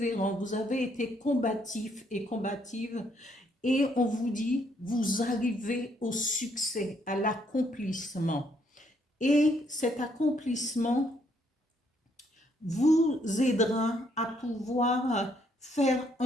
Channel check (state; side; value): normal; both; correlation 0.71